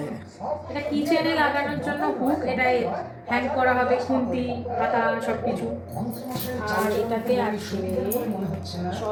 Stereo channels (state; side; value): identical; both; correlation 1.00